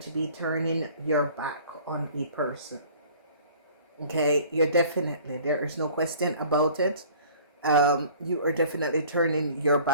to be turning your back on a person. Okay, you're definitely, there is no question about it. You are definitely turning your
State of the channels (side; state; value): both; inverted; correlation -0.50